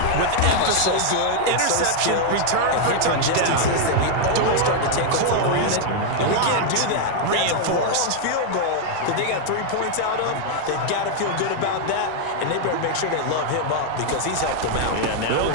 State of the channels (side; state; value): both; different; correlation 0.00